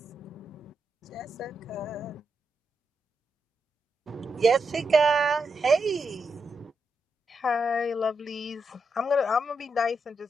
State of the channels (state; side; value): normal; both; correlation 0.84